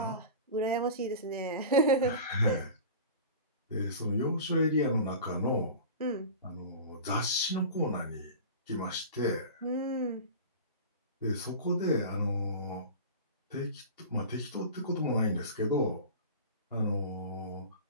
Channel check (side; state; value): both; inverted; correlation -0.34